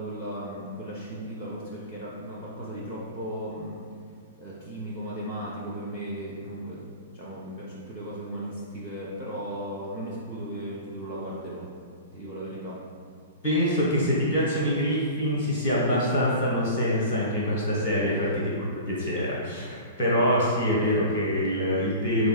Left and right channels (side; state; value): both; inverted; correlation -0.36